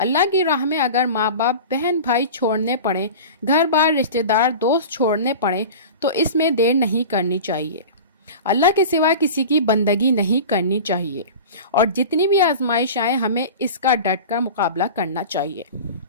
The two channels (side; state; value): both; inverted; correlation -0.33